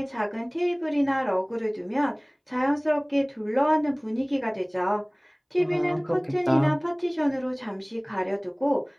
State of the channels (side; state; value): both; identical; correlation 1.00